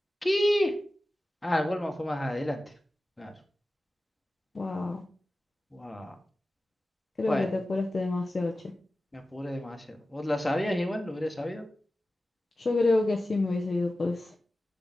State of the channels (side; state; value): both; normal; correlation 0.95